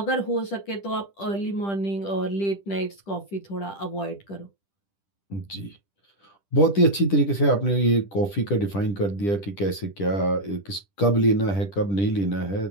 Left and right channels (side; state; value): right; late; 10 ms